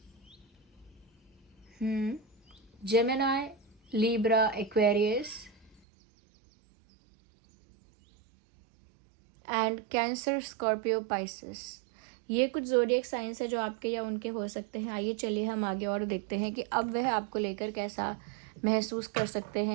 Gemini, Libra, Aquarius and cancer, Scorpio, Pisces. ये कुछ ज़ोडिएक साइंस है जो आपके या उनके हो सकते हैं। आइए चलिए हम आगे और देखते हैं कि अब वह आपको लेकर कैसा महसूस कर सकते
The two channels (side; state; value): left; drops out; at 5.8 s